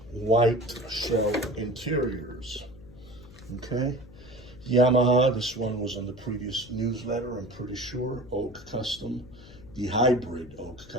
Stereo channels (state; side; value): noise; left; hum, 20 dB below the sound